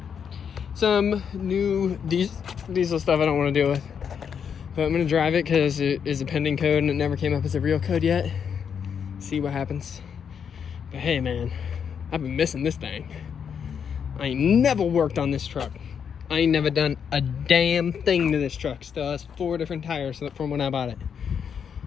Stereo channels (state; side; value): quieter; right; 7.3 dB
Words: Some new diesel stuff I don't want to deal with, but I'm gonna drive it because it is a pending code and it never came up as a real code yet. See what happens. But hey man, I've been missing this thing. I ain't never worked on this truck. I ain't never done a damn thing to this truck. Still has 4 different tires from when I bought it.